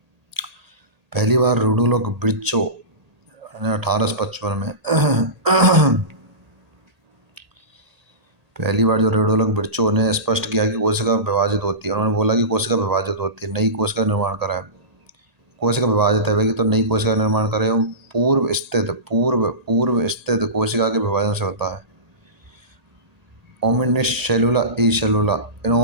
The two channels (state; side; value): late; left; 1.8 ms